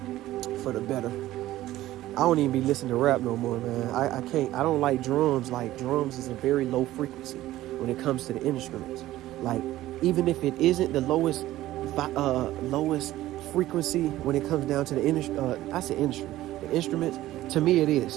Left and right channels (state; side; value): quieter; left; 15.2 dB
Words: for the better. I don't even be listening to rap no more, man. I can't. I don't like drums. Like, drums is a very low frequency when it comes to the instruments. Like, even if it isn't the lowest frequency when it comes down to the the instruments. To me, it